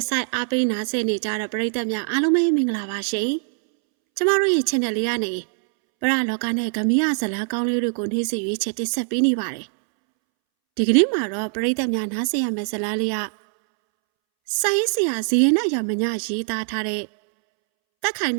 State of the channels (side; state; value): left; silent; 64 dB below the other